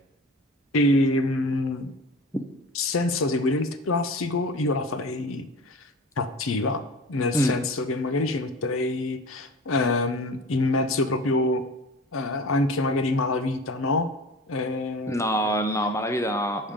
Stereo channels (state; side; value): normal; both; correlation 0.36